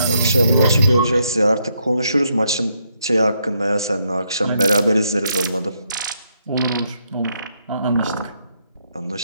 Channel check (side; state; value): both; inverted; correlation -0.76